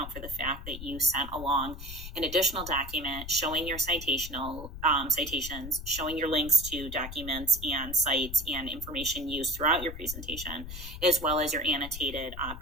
for the fact that you sent along an additional document showing your citations, showing your links to documents and sites and information used throughout your presentation, as well as your annotated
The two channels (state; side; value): noise; left; rumble, 10 dB below the sound